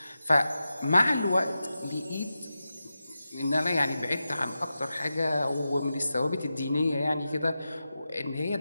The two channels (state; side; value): inverted; both; correlation -0.92